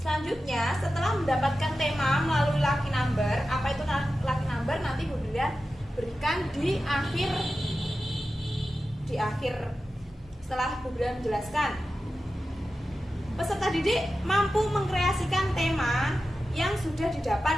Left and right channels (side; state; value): both; normal; correlation 0.93